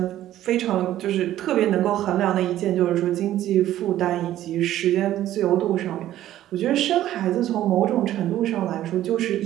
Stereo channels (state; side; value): quieter; left; 13.1 dB